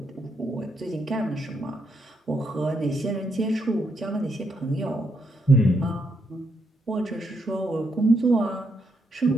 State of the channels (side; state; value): both; normal; correlation 0.78